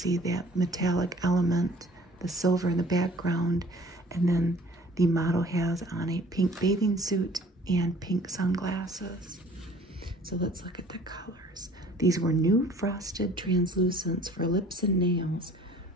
that metallic element, the silver in the background. And then the model has on a pink bathing suit and pink sunglasses. So let's look at the colors. These were new frosted translucents for lips and nails.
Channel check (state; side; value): normal; both; correlation 0.52